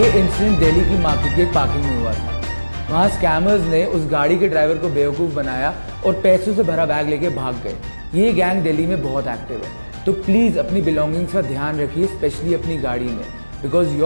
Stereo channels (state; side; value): inverted; both; correlation -1.00